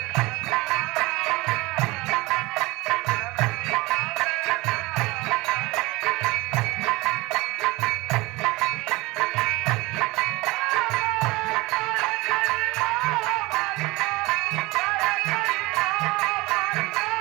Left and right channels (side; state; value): left; quieter; 22.0 dB